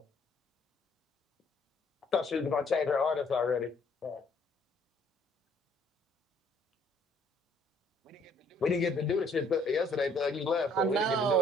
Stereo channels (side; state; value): both; normal; correlation 0.62